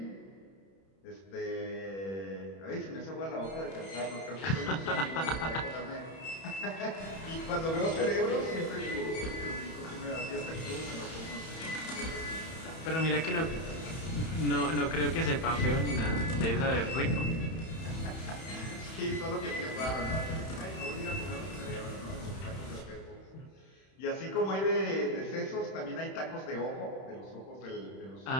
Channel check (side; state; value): right; late; 31 ms